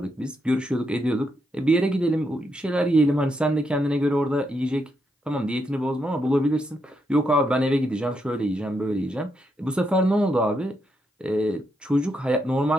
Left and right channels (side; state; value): both; normal; correlation 0.80